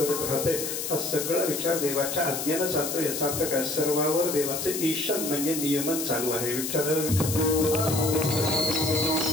राहते. हा सगळा विचार देवाच्या आज्ञेनं चालतो. याचा अर्थ काय, सर्वावर देवाचे ईशन म्हणजे नियमन चालू आहे. विठ्ठल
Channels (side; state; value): left; noise; hiss, 4 dB below the sound